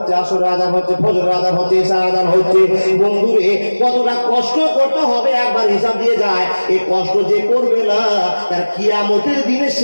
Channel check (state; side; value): inverted; both; correlation -1.00